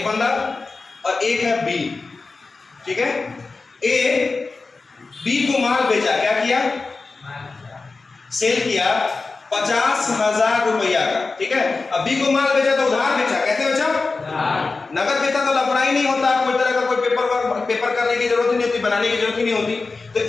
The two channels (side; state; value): right; quieter; 3.9 dB